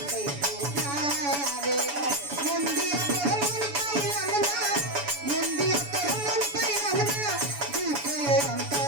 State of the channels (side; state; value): left; late; 7.0 ms